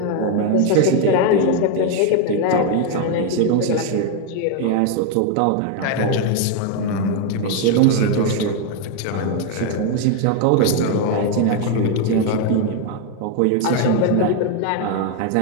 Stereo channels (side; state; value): both; different; correlation 0.01